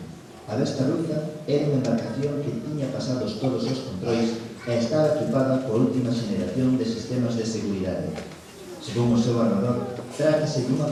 A Vesta Ruza era unha embarcación que tiña pasados todos os controis e estaba equipada coa última xeneración de sistemas de seguridade. Según o seu armador, trátase dunha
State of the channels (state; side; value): identical; both; correlation 1.00